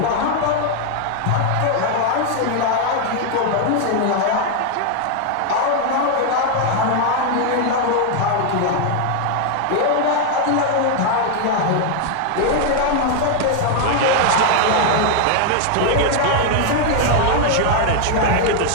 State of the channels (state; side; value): different; both; correlation 0.00